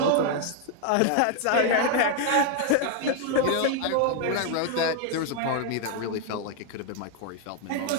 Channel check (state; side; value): different; both; correlation 0.00